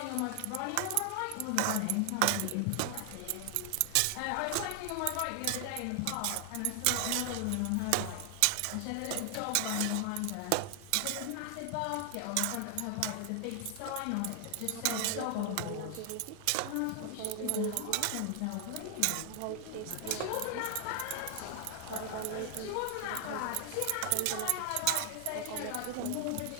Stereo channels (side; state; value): both; different; correlation 0.00